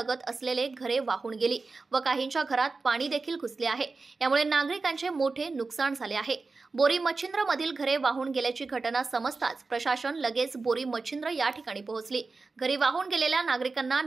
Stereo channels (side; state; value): left; quieter; 4.0 dB